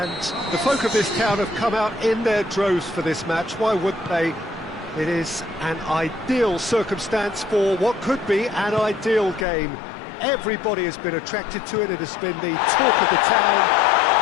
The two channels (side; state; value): right; drops out; at 9.5 s